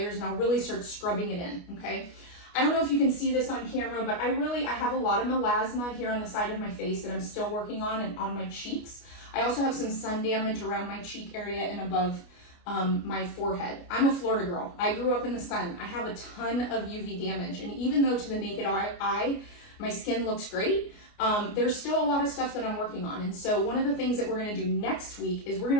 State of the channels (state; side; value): late; right; 29 ms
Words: and I'll really start scrubbing it in, okay? I don't know if you can see this on camera, but I have a lot of melasma here on the side of my face that I'm still working on and on my cheeks. I also have some sun damage around my cheek area and above my forehead. I'm a Florida girl. I grew up in the sun. I have a ton of UV damage. And even though to the naked eye, my skin looks great, there's still a lot of stuff that I'm working on. And so one of the things that we're gonna do next week is we're